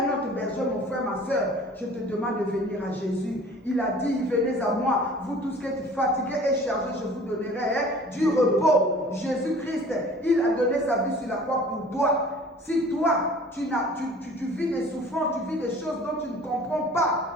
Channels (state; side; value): normal; both; correlation 0.47